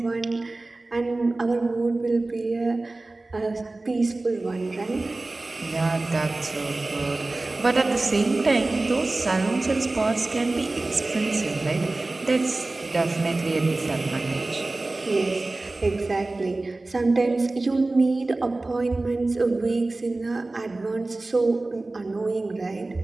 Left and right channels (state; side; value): quieter; left; 3.1 dB